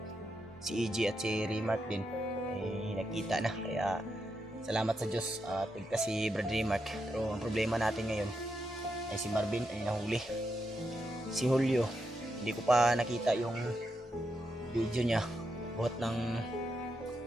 si EG at si Remark din ay nakita na. Kaya salamat sa Diyos at si Brad Remark. Pero ang problema natin ngayon ay si Marvin ay nahuli. Si Julio, hindi ko pa nakita yung video niya. Buhat ng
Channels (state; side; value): normal; both; correlation 0.84